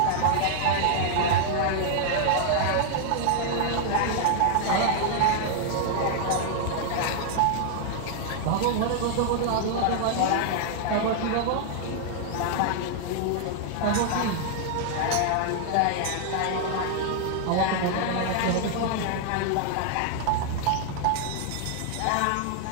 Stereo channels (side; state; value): both; different; correlation 0.00